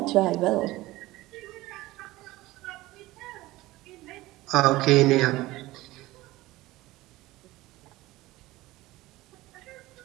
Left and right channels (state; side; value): quieter; left; 18.4 dB